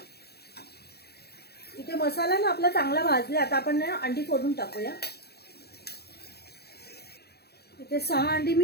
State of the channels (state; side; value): late; right; 0.47 ms